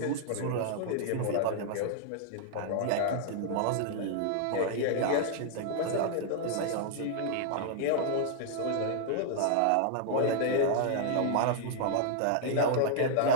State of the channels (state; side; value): different; both; correlation -0.01